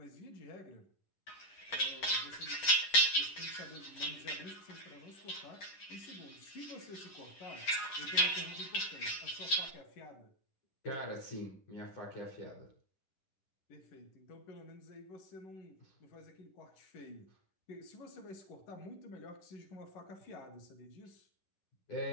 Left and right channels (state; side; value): late; right; 10 ms